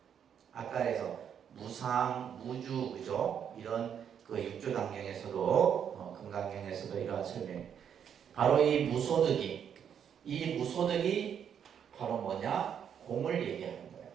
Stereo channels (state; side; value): quieter; left; 8.3 dB